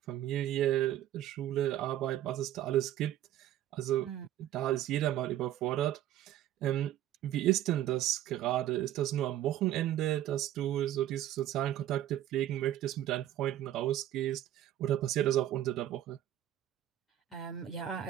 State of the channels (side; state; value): left; quieter; 12.6 dB